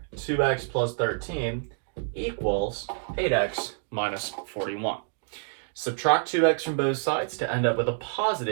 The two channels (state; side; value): silent; left; digital silence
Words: 2x plus 13 equals 8x minus 41. Subtract 2x from both sides to end up with a